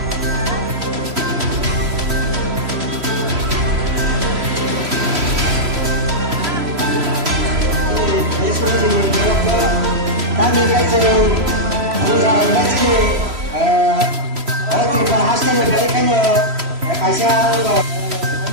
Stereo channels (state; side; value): late; left; 3.1 ms